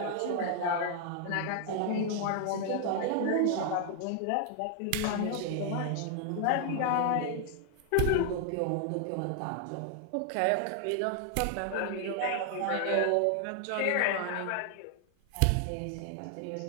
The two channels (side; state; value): both; different; correlation 0.00